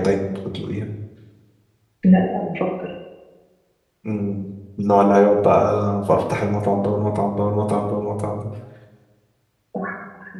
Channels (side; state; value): both; identical; correlation 1.00